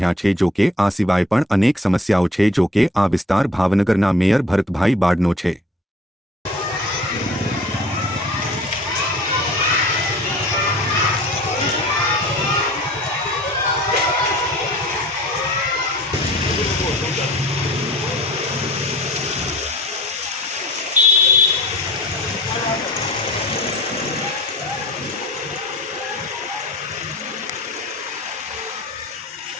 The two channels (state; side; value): normal; both; correlation 0.48